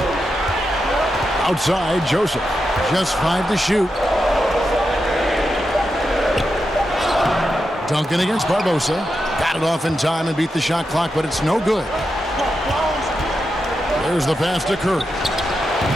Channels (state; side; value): normal; both; correlation 0.87